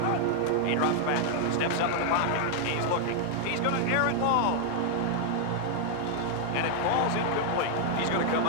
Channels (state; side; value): different; both; correlation -0.01